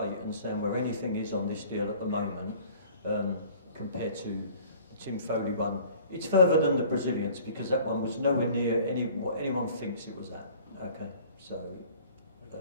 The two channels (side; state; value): both; inverted; correlation -0.50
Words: and stand where anything is on this deal at the moment compared to the Tim Foley one. It's further than the Brazilians because that one was nowhere near what anyone thinks it was at. Okay, so.